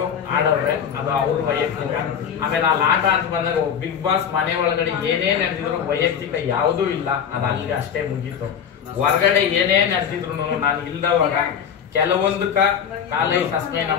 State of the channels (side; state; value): right; quieter; 7.9 dB